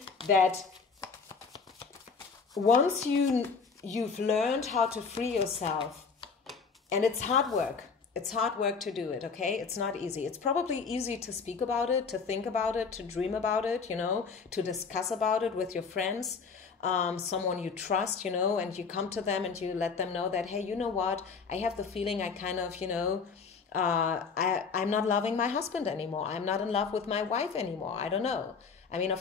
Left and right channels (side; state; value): right; quieter; 5.2 dB